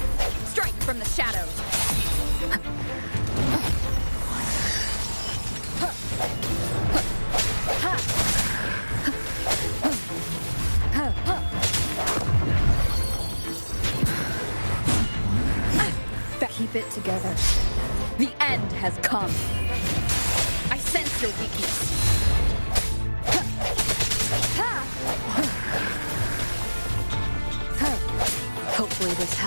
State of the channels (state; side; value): inverted; both; correlation -1.00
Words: Strike from the shadows. Keep it together. The end has come. I sense your weakness. Hopefully this